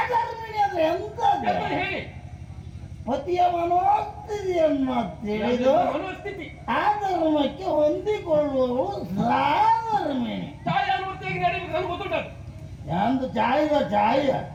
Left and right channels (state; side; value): identical; both; correlation 1.00